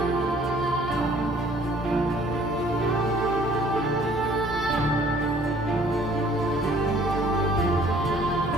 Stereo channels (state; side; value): normal; both; correlation 0.56